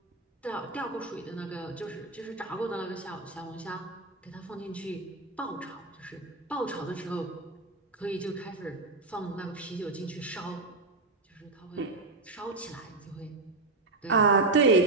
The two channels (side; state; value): left; quieter; 3.4 dB